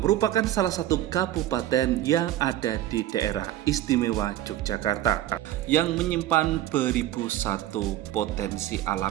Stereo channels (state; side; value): quieter; left; 13.4 dB